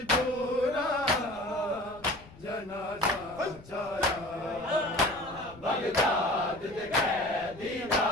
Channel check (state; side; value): noise; left; rumble, 21 dB below the sound